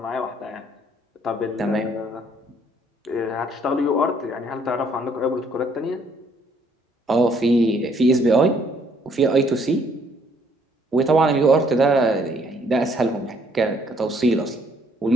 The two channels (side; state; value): both; normal; correlation 0.65